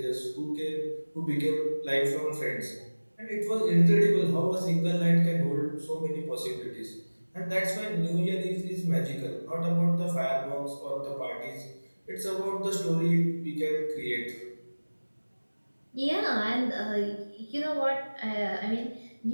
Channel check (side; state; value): both; inverted; correlation -1.00